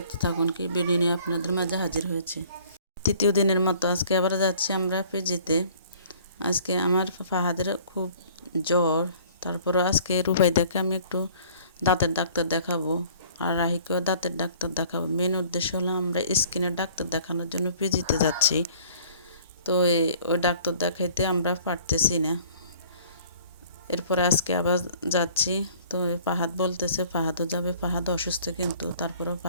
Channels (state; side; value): inverted; both; correlation -0.53